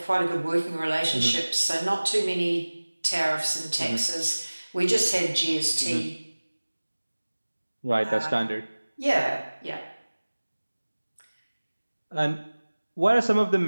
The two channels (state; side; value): inverted; both; correlation -1.00